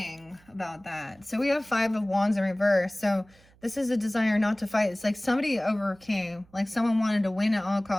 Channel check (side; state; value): right; noise; hum, 29 dB below the sound